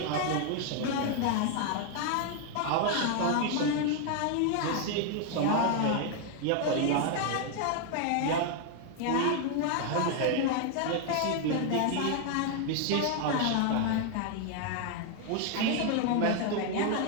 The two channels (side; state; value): both; different; correlation 0.00